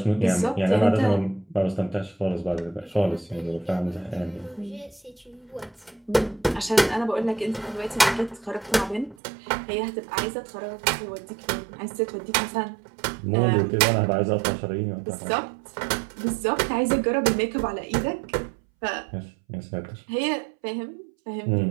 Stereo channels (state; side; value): drops out; left; at 9.2 s